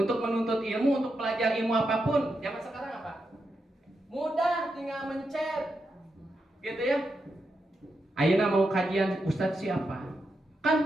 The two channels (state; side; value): normal; both; correlation 0.85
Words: menuntut ilmu, untuk belajar ilmu apapun zaman sekarang apa, mudah, tinggal mencet gitu ya. Ayeuna mau kajian Ustadz siapa,